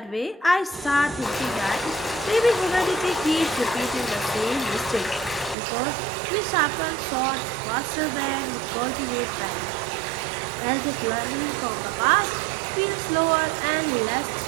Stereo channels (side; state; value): left; drops out; at 5.6 s